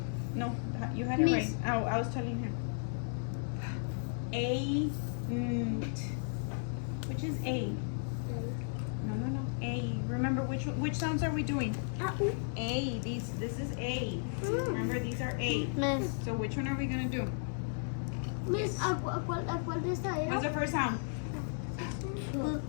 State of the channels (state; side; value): silent; right; digital silence